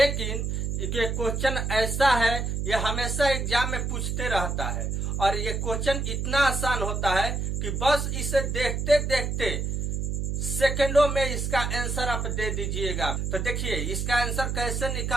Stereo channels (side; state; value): right; noise; hum, 1 dB below the sound